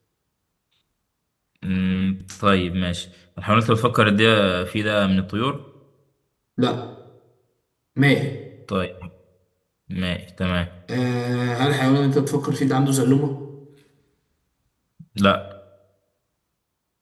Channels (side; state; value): both; identical; correlation 1.00